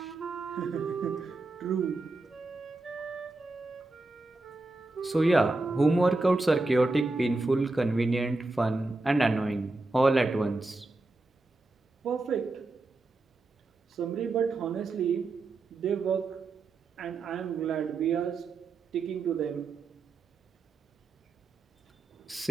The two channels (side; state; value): left; quieter; 3.2 dB